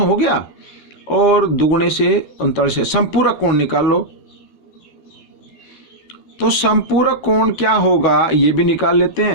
गया, और दुगुने से 39 से संपूरक कोण निकाल लो। तो संपूरक कोण क्या होगा ये भी निकाल लेते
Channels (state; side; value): late; right; 12 ms